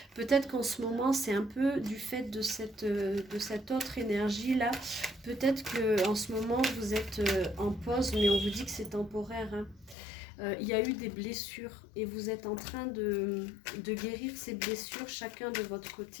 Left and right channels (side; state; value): right; drops out; at 10.0 s